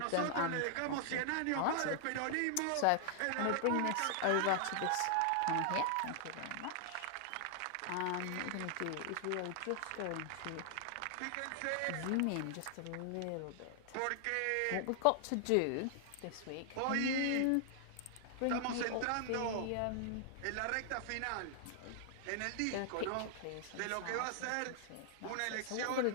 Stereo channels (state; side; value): different; both; correlation 0.00